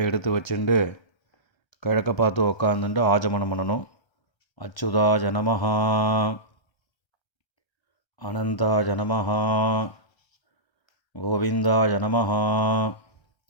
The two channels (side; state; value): right; late; 1.3 ms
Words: எடுத்து வச்சுட்டு கிழக்க பார்த்து உக்காந்துட்டு ஆஜமனம் பண்ணணும். அச்சுதாய நமஹ, அனந்தாய நமஹ, கோவிந்தாய நமஹ,